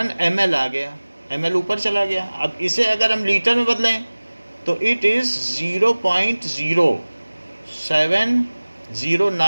ml आ गया, ml ऊपर चला गया। अब इसे अगर हम लीटर में बदलें तो इट इज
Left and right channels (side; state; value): both; inverted; correlation -1.00